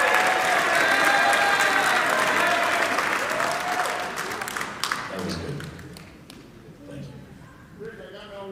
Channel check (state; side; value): identical; both; correlation 1.00